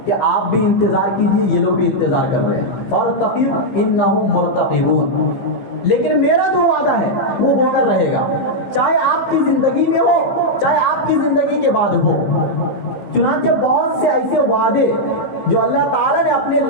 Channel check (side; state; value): right; late; 15 ms